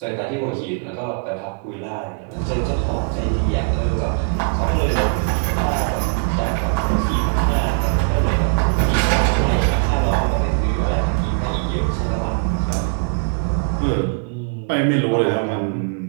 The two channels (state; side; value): quieter; left; 36.5 dB